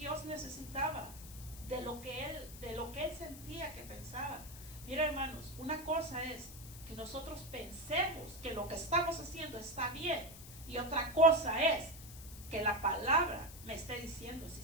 necesitaba de lo que él sentía, que pensaba? Mira, hermanos, una cosa es que nosotros pensemos que lo que estamos haciendo está bien, y otra cosa es que la palabra me esté diciendo si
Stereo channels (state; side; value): noise; left; hiss, 15 dB below the sound